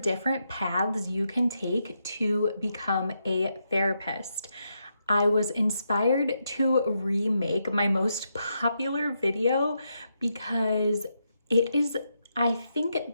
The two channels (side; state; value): both; inverted; correlation -0.82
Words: paths you can take to become a therapist. I was inspired to remake my most popular video because it is, I